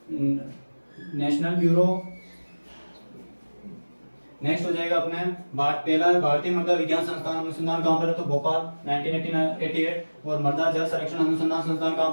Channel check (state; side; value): inverted; both; correlation -1.00